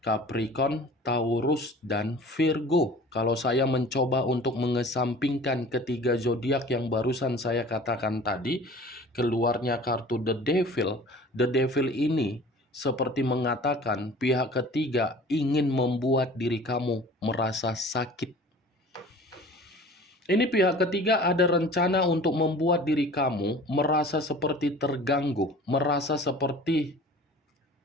Capricorn, Taurus, dan Virgo. Kalau saya mencoba untuk mengesampingkan ketiga zodiak yang barusan saya katakan tadi, keluarnya kartu The Devil. The Devil ini seperti mengatakan pihak ketiga ingin membuat diri kamu merasa sakit. Ini pihak ketiga ada rencana untuk membuat diri kamu merasa seperti terganggu, merasa seperti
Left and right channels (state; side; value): normal; both; correlation 0.44